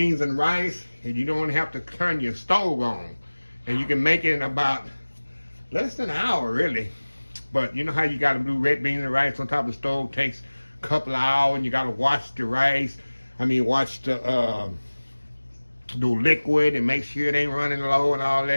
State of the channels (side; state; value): both; inverted; correlation -1.00